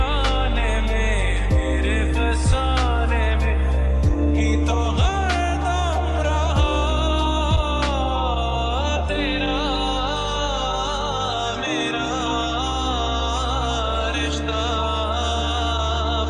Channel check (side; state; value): both; identical; correlation 1.00